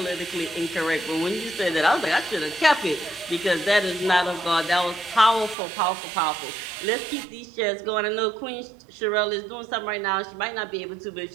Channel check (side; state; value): left; drops out; at 5.6 s